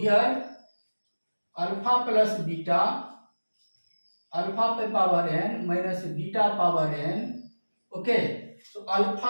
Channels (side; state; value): both; inverted; correlation -1.00